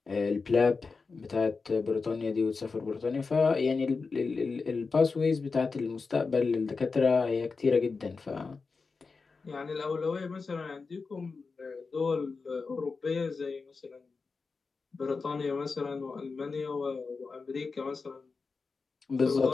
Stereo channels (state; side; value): quieter; right; 4.5 dB